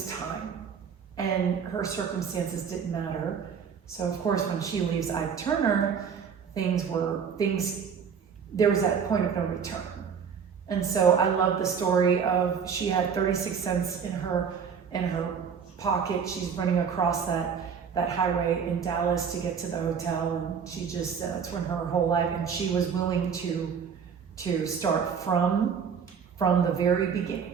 time and her circumstances didn't matter. So of course when she leaves Ike Turner, there was that point of no return. And so I love the story of she had 36 cents in her pocket. She's running across that highway in Dallas to get to the hotel, and she just that's when her whole life, and she was willing to start from the very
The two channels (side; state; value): left; quieter; 6.8 dB